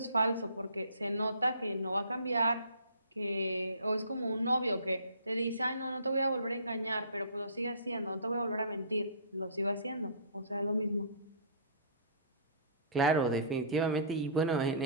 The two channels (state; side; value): inverted; both; correlation -0.46